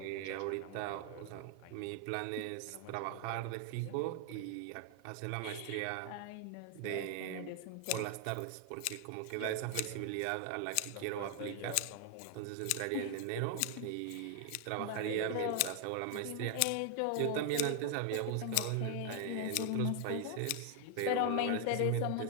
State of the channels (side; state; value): both; different; correlation 0.00